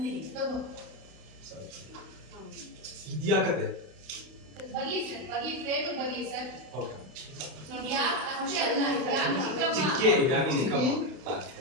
ತಗೋ ಇದ್ಯಾಕತ್ತೆ ಬಗ್ಲಿ ಸರ್ ಬಗ್ಲಿ ಫ್ರೇಮ್ ಬಗ್ಲಿ ಸರ್ ಓಕೆ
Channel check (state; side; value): late; left; 32 ms